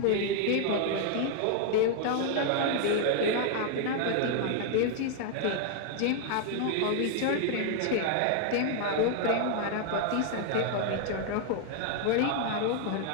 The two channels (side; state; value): both; different; correlation 0.00